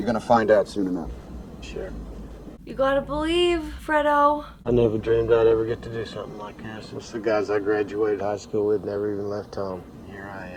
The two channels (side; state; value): both; identical; correlation 1.00